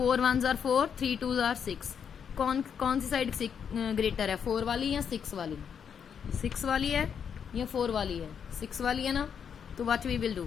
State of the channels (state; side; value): quieter; right; 7.4 dB